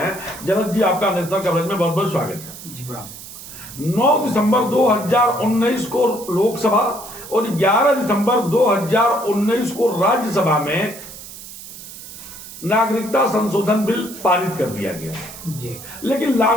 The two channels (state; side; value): noise; right; hiss, 14 dB below the sound